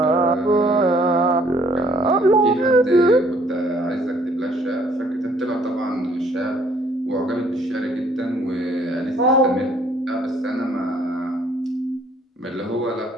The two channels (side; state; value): both; normal; correlation 0.62